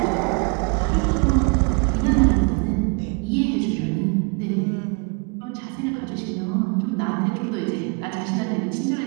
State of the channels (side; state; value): left; quieter; 33.6 dB